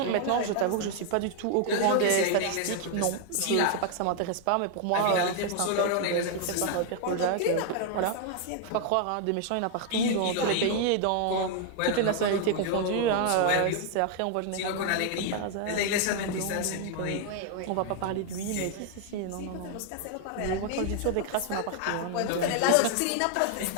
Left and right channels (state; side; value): different; both; correlation 0.00